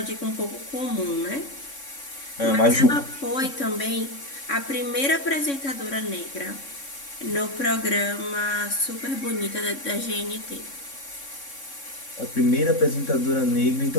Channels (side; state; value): right; late; 3.6 ms